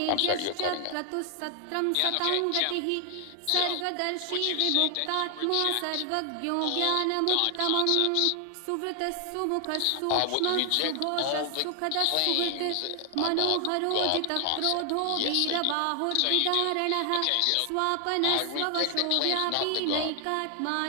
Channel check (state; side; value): different; both; correlation 0.00